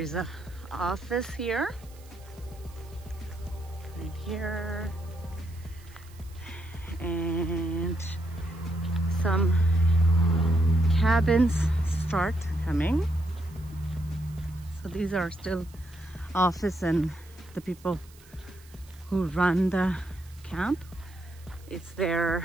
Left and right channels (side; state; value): right; noise; hiss, 25 dB below the sound